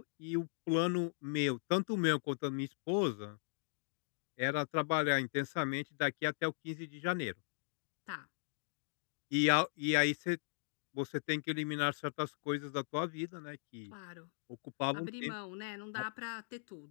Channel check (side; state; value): right; silent; digital silence